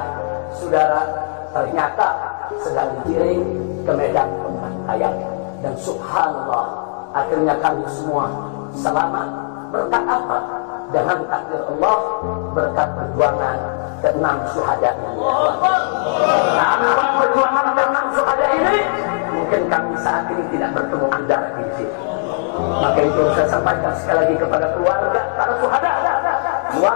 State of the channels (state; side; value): silent; right; 62 dB below the other